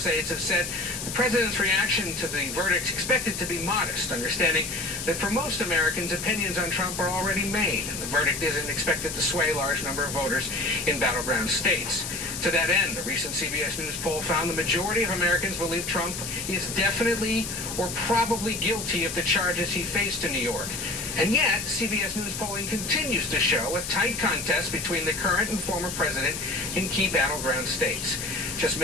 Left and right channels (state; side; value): noise; left; hiss, 6 dB below the sound